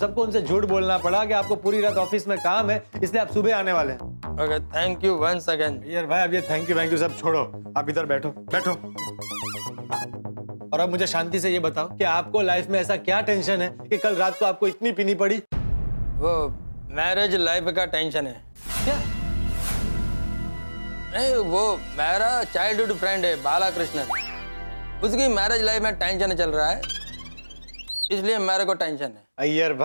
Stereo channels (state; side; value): inverted; both; correlation -1.00